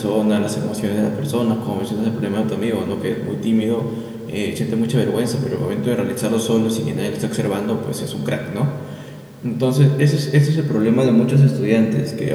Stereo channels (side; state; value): both; identical; correlation 1.00